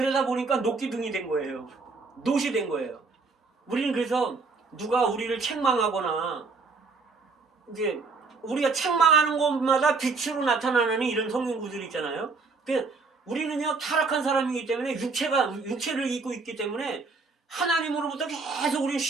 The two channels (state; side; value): quieter; left; 4.2 dB